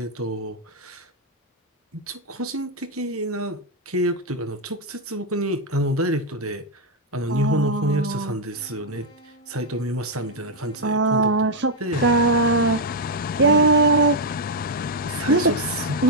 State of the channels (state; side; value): normal; both; correlation -0.02